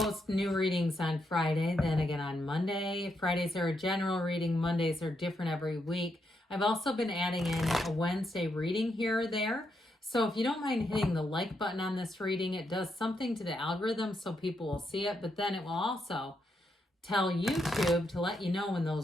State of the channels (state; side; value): normal; both; correlation 0.81